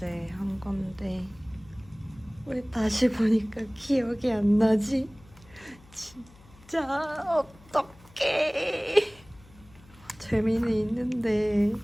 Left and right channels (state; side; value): noise; left; hum, 25 dB below the sound